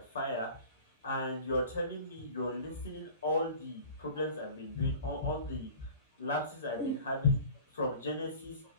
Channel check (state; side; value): inverted; both; correlation -0.42